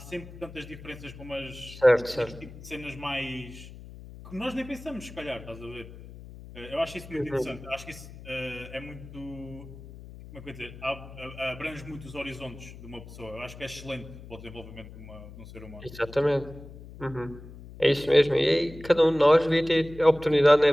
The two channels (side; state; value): left; noise; hum, 16 dB below the sound